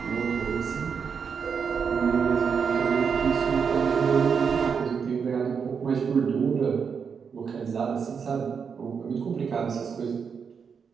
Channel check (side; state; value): left; quieter; 6.3 dB